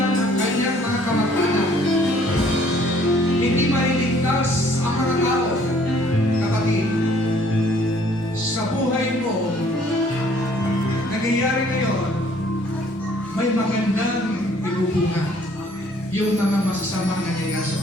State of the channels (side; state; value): both; normal; correlation 0.60